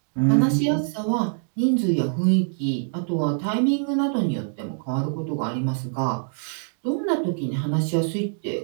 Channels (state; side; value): silent; left; digital silence